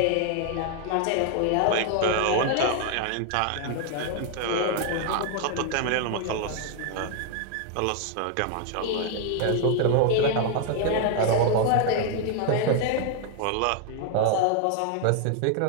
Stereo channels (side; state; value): both; different; correlation 0.00